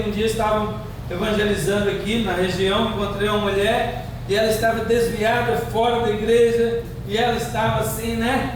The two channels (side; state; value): both; identical; correlation 1.00